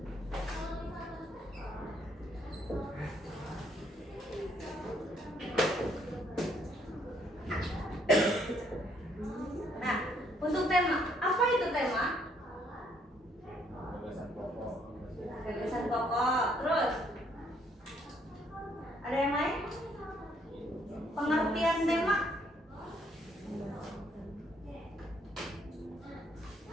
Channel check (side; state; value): both; normal; correlation 0.68